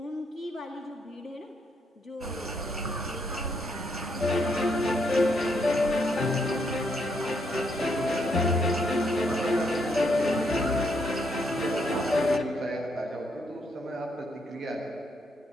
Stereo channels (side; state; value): both; normal; correlation 0.75